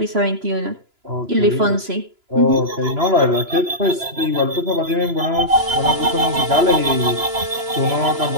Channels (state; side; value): late; left; 2.9 ms